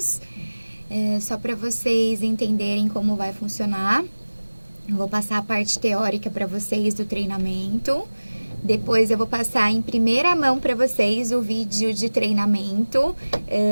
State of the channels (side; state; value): both; inverted; correlation -1.00